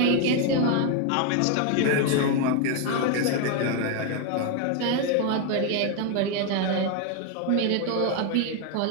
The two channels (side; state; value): both; different; correlation 0.01